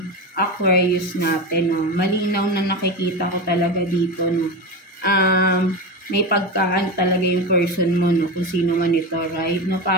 Aquarius natin, no? Malinaw na nakikita ko talaga dito, no? May pagkaan talaga yung person mo, no? Kung sino man ito, right? No?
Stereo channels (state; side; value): normal; both; correlation 0.20